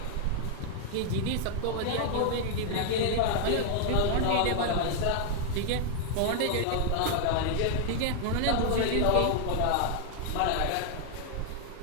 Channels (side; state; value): both; different; correlation 0.00